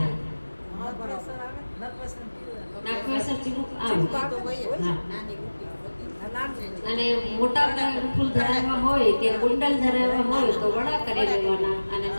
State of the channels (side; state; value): both; inverted; correlation -1.00